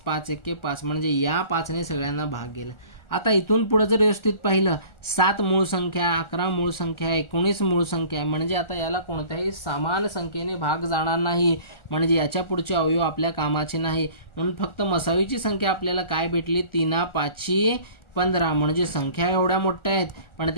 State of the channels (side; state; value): right; late; 1.4 ms